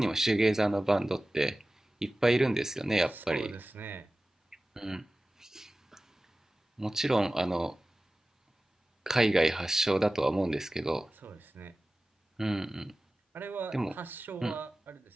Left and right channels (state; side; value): normal; both; correlation 0.96